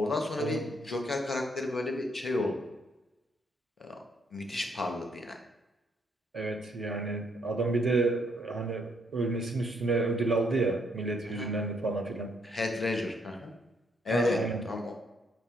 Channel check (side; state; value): both; normal; correlation 0.71